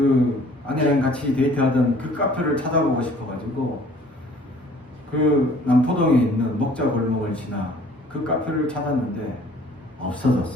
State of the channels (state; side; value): normal; both; correlation 0.54